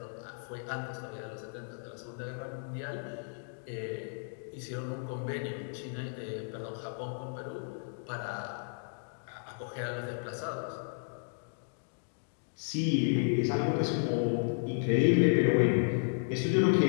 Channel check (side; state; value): right; silent; digital silence